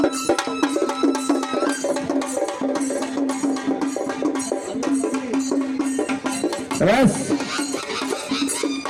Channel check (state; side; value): identical; both; correlation 1.00